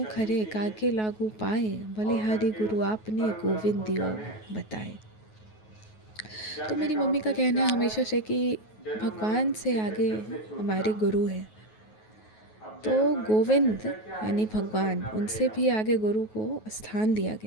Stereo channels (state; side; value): late; right; 9.3 ms